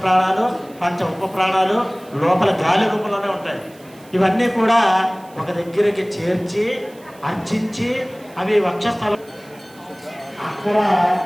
పంచ ఉప ప్రాణాలు లోపల గాలి రూపంలోనే ఉంటాయి. ఇవన్నీ కూడా ఒక దగ్గరికి చేర్చి అర్చించి అవి వక్షస్థలం అక్కడ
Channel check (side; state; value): right; noise; hiss, 26 dB below the sound